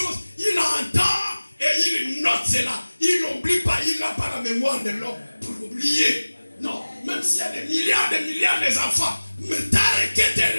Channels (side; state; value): both; inverted; correlation -1.00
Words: il entend et il note cela. Il n'oublie pas, il n'a pas la mémoire de l'homme pour oublier. Non, même s'il y a des milliards d'enfants, mais t'as que tu